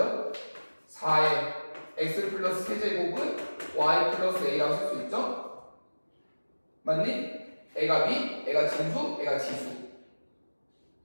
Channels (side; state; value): both; inverted; correlation -1.00